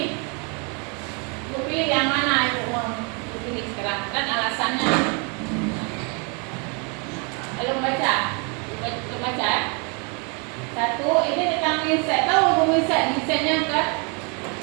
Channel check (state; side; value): quieter; left; 34.5 dB